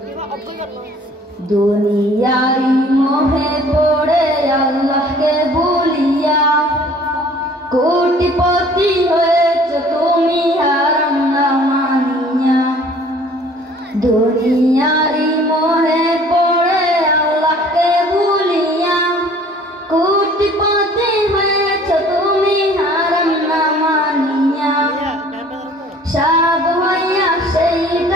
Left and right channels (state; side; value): normal; both; correlation 0.52